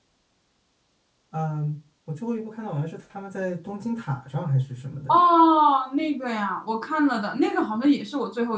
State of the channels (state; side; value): identical; both; correlation 1.00